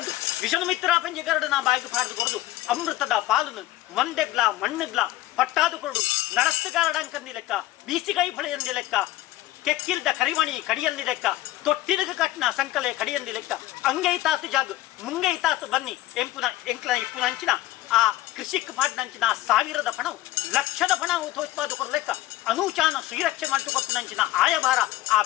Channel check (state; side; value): quieter; right; 16.1 dB